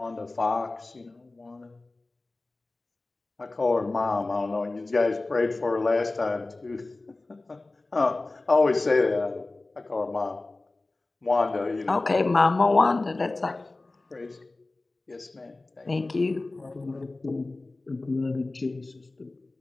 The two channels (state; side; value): quieter; right; 3.1 dB